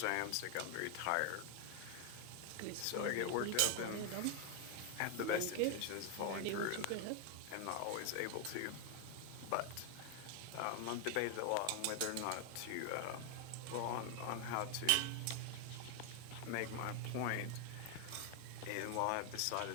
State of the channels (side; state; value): both; different; correlation 0.00